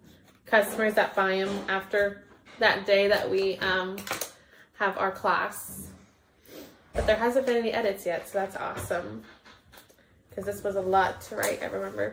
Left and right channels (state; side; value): identical; both; correlation 1.00